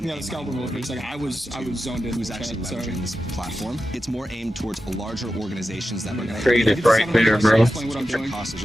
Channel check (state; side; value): normal; both; correlation 0.91